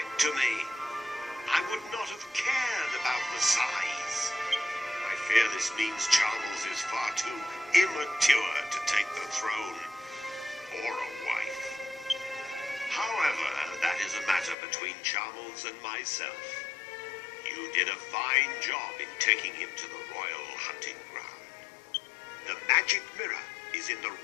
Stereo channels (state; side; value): drops out; right; at 14.6 s